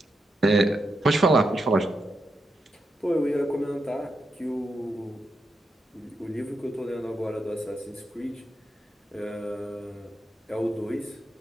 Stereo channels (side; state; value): both; normal; correlation 0.85